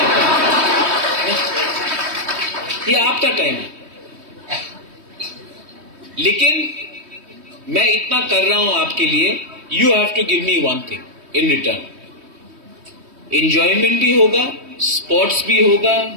ये आपका टाइम है, लेकिन मैं इतना कर रहा हूं आपके लिए, you have to give me one thing in return. Enjoyment भी होगा, स्पोर्ट्स भी होगा,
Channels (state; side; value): late; left; 3.2 ms